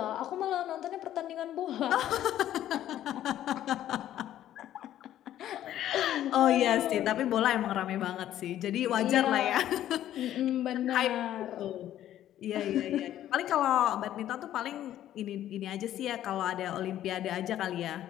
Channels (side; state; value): right; quieter; 12.2 dB